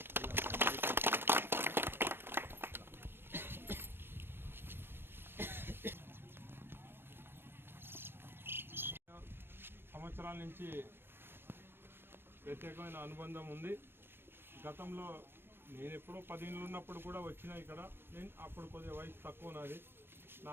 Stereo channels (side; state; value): left; late; 0.11 ms